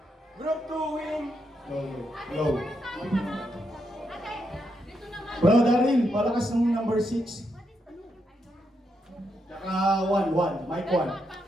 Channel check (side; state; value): both; normal; correlation 0.81